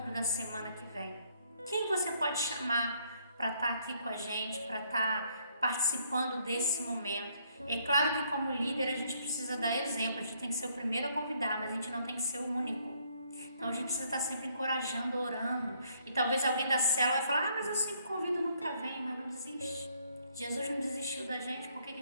da semana que vem? Quem você pode chamar para estar aqui com a gente, para estar participando desse momento? É claro que como líder a gente precisa dar exemplo, a gente tem que ser o primeiro a convidar, mas a gente não tem que ser o único. Então a gente precisa estar sempre encorajando, orando. E talvez alguém da célula vai falar, mas eu sempre convido, nunca vem, mas não desiste. Jesus não desistiu da gente, por que a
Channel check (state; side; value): inverted; both; correlation -0.68